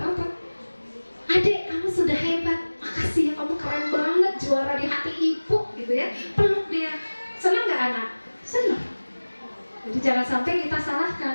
Adik, kamu sudah hebat, makasih ya, kamu keren banget, juara di hati ibu gitu ya. Peluk dia. Senang nggak anak? Senang. Jadi jangan sampai kita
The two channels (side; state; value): both; inverted; correlation -1.00